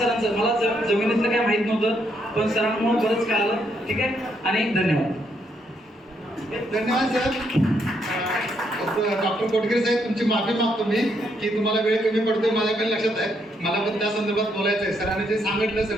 मला जमिनीतलं काय माहित नव्हतं, पण सरांमुळे बरंच कळालं, ठीक आहे. आणि धन्यवाद. धन्यवाद सर. डॉक्टर कोटगिरे साहेब, तुमची माफी मागतो मी की तुम्हाला वेळ कमी पडतोय, माझ्याकडे लक्षात आहे. मला पण त्या संदर्भात बोलायचं आहे. सरांनी जे सांगितलं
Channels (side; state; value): both; normal; correlation 0.75